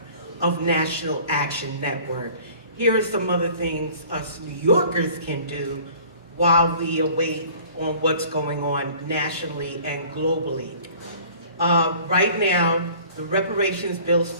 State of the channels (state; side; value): inverted; both; correlation -0.49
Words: of National Action Network, here are some other things us New Yorkers can do while we await on what's going on nationally and globally. Right now, the reparations bill